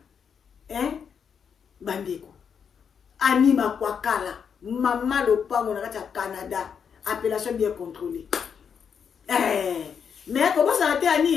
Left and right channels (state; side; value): quieter; right; 7.0 dB